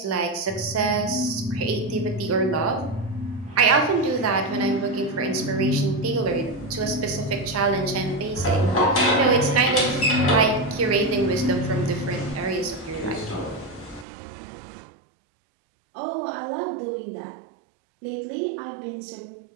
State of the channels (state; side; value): drops out; left; at 14.1 s